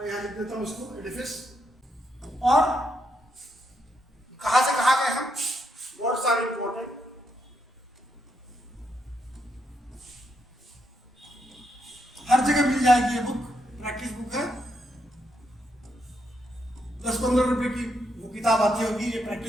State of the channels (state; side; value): normal; both; correlation 0.79